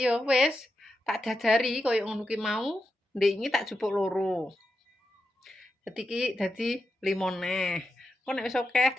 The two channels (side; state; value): both; normal; correlation 0.88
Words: ya wis tak dadari kaya ngono ki mau. Ndek iki tak jupuk 2. Dadi 5 neh. Kok nek wis akeh